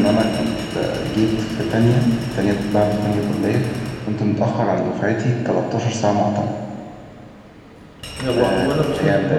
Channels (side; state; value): both; identical; correlation 1.00